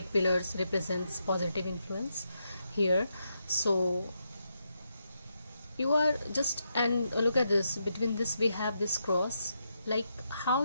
pillars represents positive influence here. So you are just, and look at this, between this we have this cross, like how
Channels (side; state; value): both; inverted; correlation -0.82